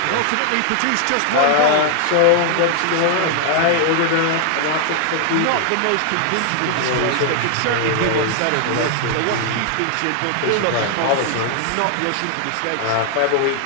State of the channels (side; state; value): both; different; correlation 0.00